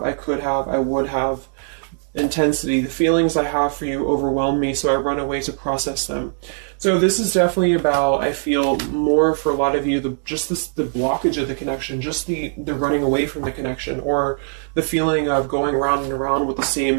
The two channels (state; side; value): silent; left; digital silence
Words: I could have, I would have. Intensity. The feelings I have for you overwhelm me, so I run away to process them. So this is definitely about, I feel, more for a lot of you, the blockage of the connection, just the running away from the connection, or the feeling of going around and around with the